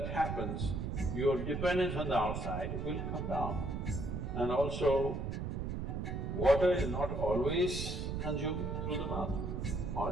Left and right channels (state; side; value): noise; right; rumble, 3 dB below the sound